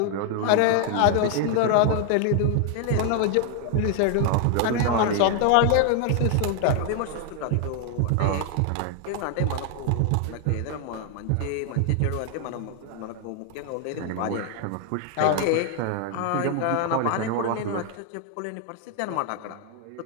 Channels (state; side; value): different; both; correlation 0.00